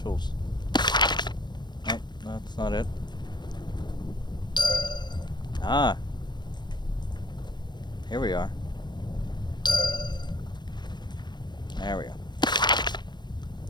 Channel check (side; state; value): right; late; 0.21 ms